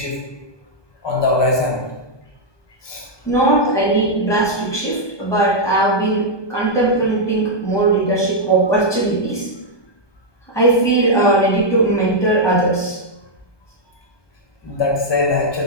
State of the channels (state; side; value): late; right; 1.2 ms